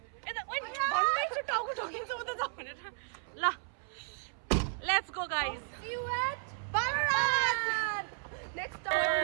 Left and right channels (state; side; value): silent; left; 55 dB below the other